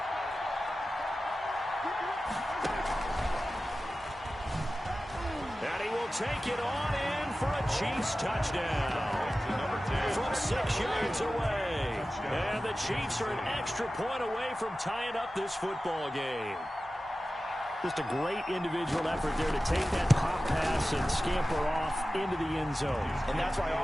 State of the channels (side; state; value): both; normal; correlation 0.95